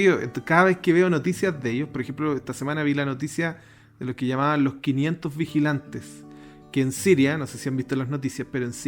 Cada vez que veo noticias de ellos, por ejemplo, esta semana vi la noticia de los que llamaban los 500 vigilantes. Que en Siria, no sé si han visto las noticias, pero en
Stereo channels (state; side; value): identical; both; correlation 1.00